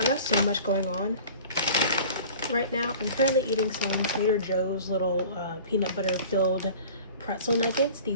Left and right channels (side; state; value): both; inverted; correlation -0.43